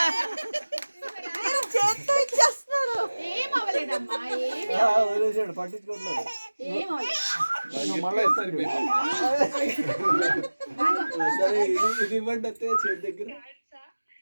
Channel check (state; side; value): inverted; both; correlation -1.00